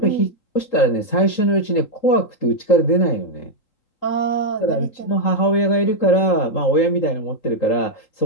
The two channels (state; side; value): late; right; 3.8 ms